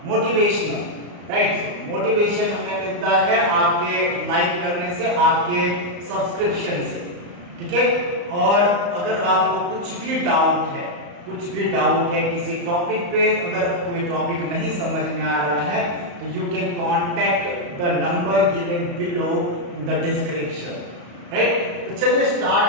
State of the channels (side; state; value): left; late; 34 ms